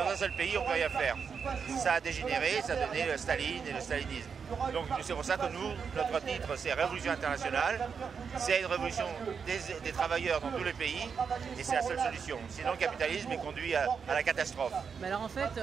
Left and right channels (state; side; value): quieter; left; 6.2 dB